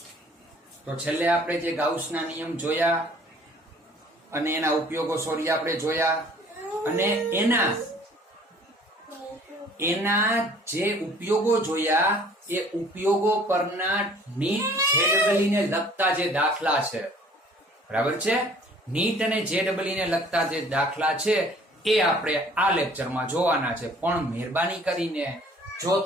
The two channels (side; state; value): both; normal; correlation 0.54